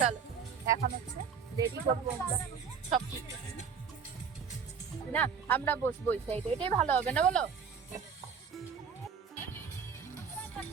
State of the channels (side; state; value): left; quieter; 6.5 dB